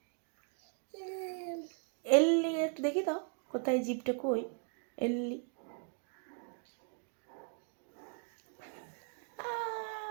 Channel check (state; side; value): quieter; left; 38.3 dB